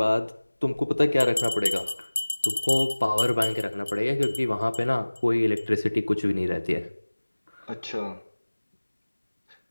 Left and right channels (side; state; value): both; inverted; correlation -1.00